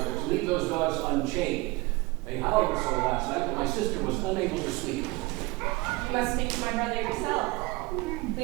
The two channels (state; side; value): quieter; left; 23.6 dB